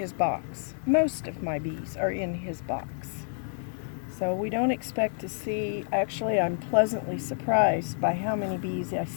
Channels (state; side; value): silent; right; digital silence